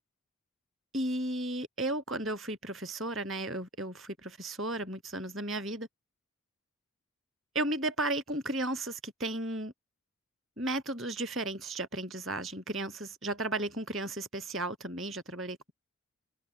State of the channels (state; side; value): normal; both; correlation 0.34